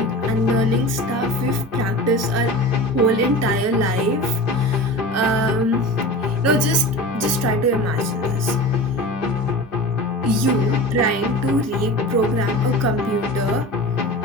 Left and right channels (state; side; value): normal; both; correlation 0.33